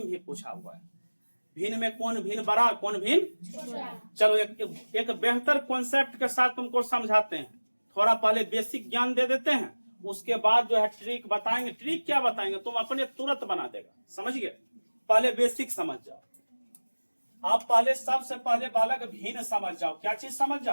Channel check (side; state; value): both; inverted; correlation -1.00